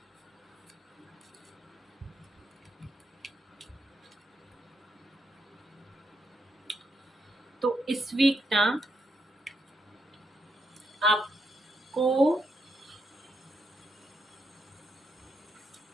तो इस वीक ना आपको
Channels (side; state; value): both; normal; correlation 0.80